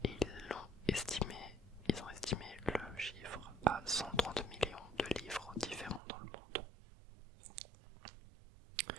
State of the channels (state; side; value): drops out; left; at 6.0 s